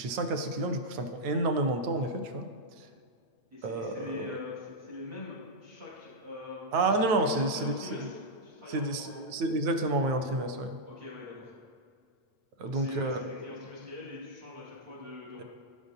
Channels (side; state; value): left; late; 8.7 ms